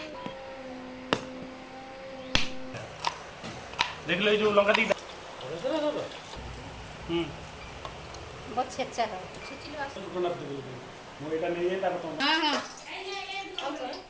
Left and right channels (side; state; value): both; identical; correlation 1.00